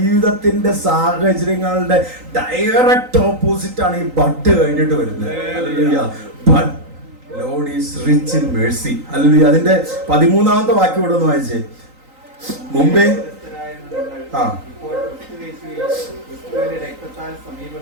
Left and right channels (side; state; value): left; late; 3.9 ms